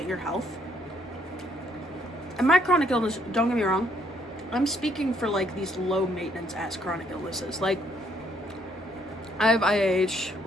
your health. And my chronic illness, don't get me wrong, I'm speaking for like these low maintenance ass chronic illnesses. Like, I have IAH,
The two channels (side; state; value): both; normal; correlation 0.69